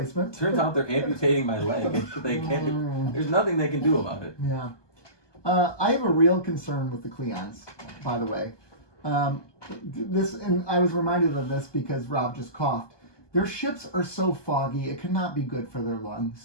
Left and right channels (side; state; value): right; late; 1.2 ms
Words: Turns out they're amputating my leg. They can't. There's nothing they can do about it. Yeah. I have a real concern with the Cleons, by the way. And I was reminded of this because Rob just coughed. Their ships are so foggy, it cannot be good for their